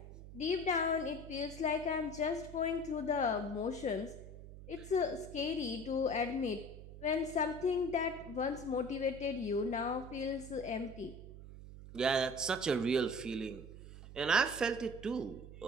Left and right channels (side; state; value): right; noise; hum, 14 dB below the sound